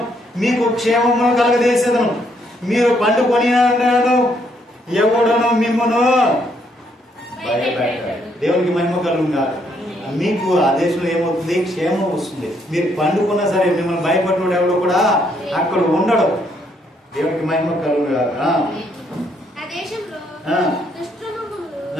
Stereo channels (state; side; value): normal; both; correlation 0.72